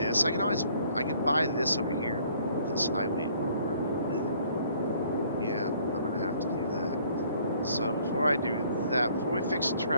I can buy this over here. This highway over. Yeah, I'm going to have to do that. So before I do that, before we fix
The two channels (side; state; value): both; inverted; correlation -0.60